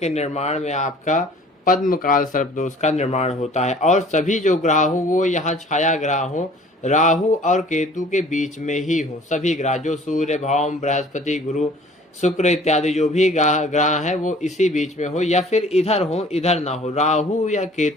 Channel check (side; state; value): both; normal; correlation 0.51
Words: निर्माण में आपका पद्मकाल सर्पदोष का निर्माण होता है। और सभी जो ग्रह हो वो यहाँ छाया ग्रह हो, राहु और केतु के बीच में ही हो। सभी ग्रह जो सूर्य, भौम, बृहस्पति, गुरु, शुक्र इत्यादि जो भी ग्रह है वो इसी बीच में हो, या फिर इधर हो, इधर ना हो, राहु या